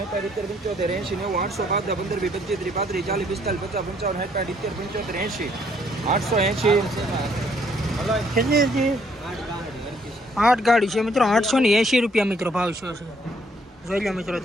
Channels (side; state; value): both; normal; correlation 0.66